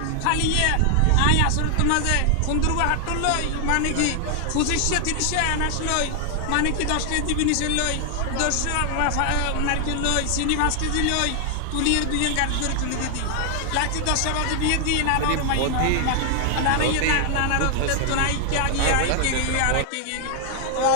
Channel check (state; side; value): different; both; correlation 0.00